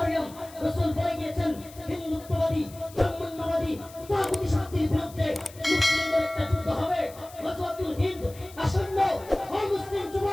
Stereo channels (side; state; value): left; noise; hiss, 20 dB below the sound